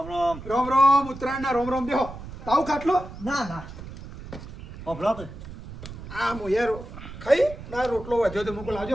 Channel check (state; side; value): noise; right; rumble, 13 dB below the sound